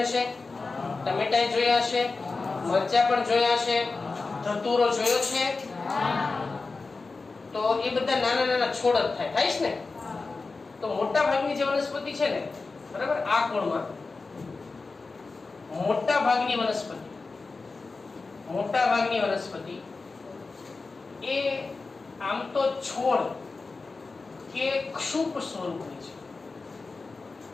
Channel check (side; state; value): right; quieter; 4.0 dB